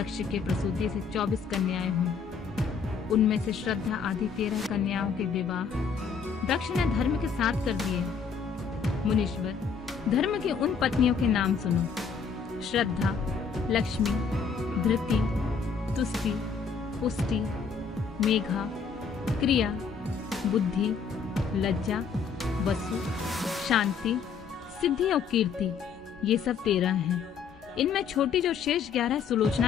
के प्रसूति से 24 कन्याएं हुई। उनमें से श्रद्धा आदि 13 कन्याओं के विवाह दक्ष ने धर्म के साथ कर दिए। मुनीश्वर, धर्म की उन पत्नियों के नाम सुनो। श्रद्धा, लक्ष्मी, धृति, तुष्टि, पुष्टि, मेघा, क्रिया, बुद्धि, लज्जा, वसु, शांति, सिद्धि और कीर्ति, ये सब 13 हैं। इनमें छोटी जो शेष 11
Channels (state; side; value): quieter; right; 5.9 dB